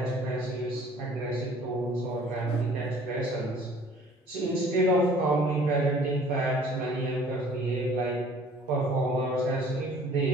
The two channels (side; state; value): both; normal; correlation 0.53